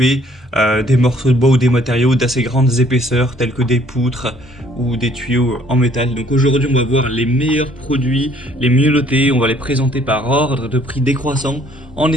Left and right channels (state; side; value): normal; both; correlation 0.61